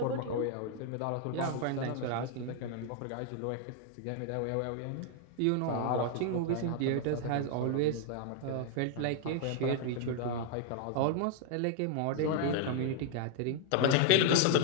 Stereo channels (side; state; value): both; different; correlation 0.00